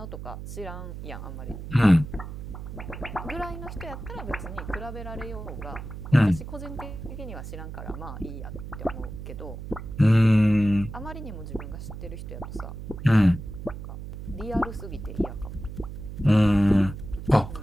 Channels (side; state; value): right; noise; hum, 9 dB below the sound